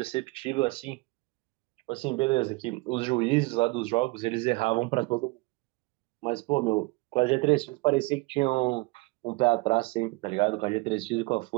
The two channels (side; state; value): left; quieter; 24.7 dB